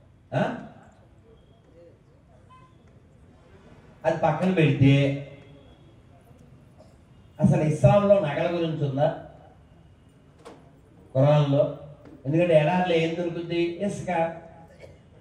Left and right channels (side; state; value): both; identical; correlation 1.00